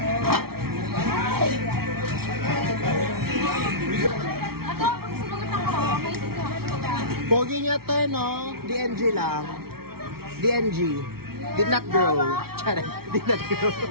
Pogi niya to, no? DNG lang. DNG. Did not grow. Charay. Did not grow.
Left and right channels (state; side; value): late; left; 0.94 ms